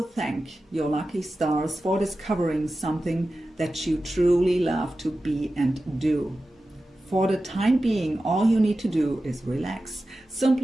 thank your lucky stars for discovering something that you truly love to be and do. For the time being, all you need to do is relax.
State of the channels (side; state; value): both; normal; correlation 0.94